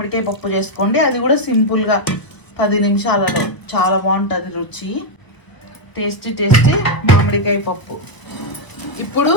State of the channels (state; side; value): late; right; 1.2 ms